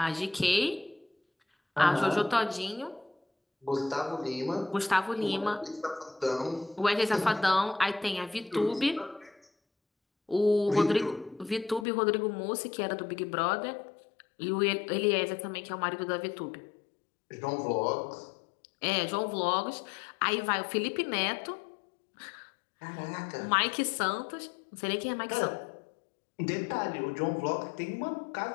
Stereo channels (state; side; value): drops out; right; at 11.9 s